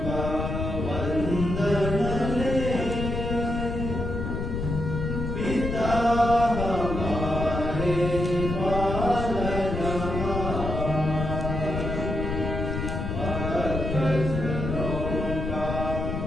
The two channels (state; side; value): noise; left; rumble, 3 dB below the sound